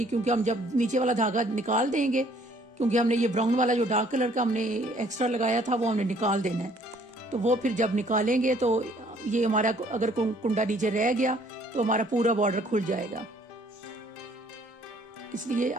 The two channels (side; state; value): both; normal; correlation 0.60